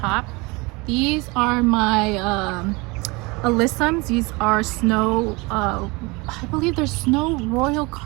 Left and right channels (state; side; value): quieter; left; 25.7 dB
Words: These are my alyssums. These are snow, I believe they're snow royal